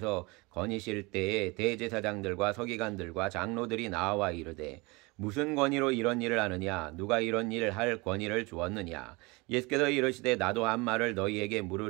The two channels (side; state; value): left; quieter; 25.7 dB